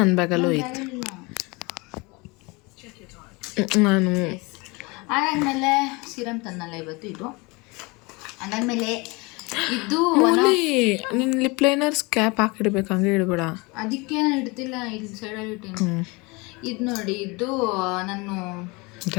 ಬ್ಯಾಗಲ್ಲೂ ಐತೆ. ನಾನು ಅದಾದಮೇಲೆ ಸಿರಮ್ ತನ್ನಲ್ಲ ಇವತ್ತು ಇದು. ಅದಾದಮೇಲೆ ಇದು ನಿನ್ನ ಲಿಪ್ ಲೈನರ್ಸ್ ಕ್ಯಾಪ್ ಹಾಕಿಡ್ಬೇಕು, ಹಂಗೆ ಇಡಬೇಡ. ಅದಕ್ಕೆ ನಾನು ಇಡ್ತಿಲ್ಲ, ಇಲ್ಲಿ ಸೈಡಲ್ಲಿ ಇಟ್ಟೀನಿ. ಇದು ನೋಡಿ, ಇದು ನಾನು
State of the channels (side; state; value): right; quieter; 26.4 dB